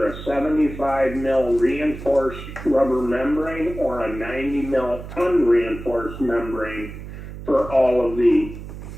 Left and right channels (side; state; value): right; noise; hum, 11 dB below the sound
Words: a 75 mil reinforced rubber membrane or a 90 mil unreinforced membrane for all of the